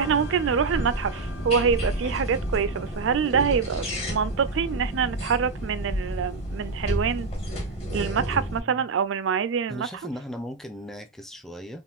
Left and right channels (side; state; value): left; quieter; 4.6 dB